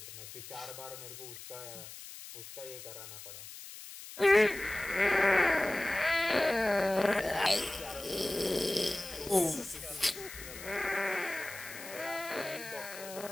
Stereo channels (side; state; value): left; noise; hiss, 13 dB below the sound